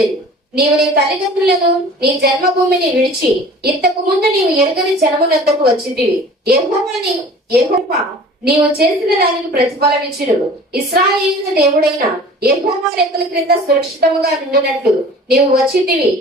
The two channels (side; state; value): both; normal; correlation 0.44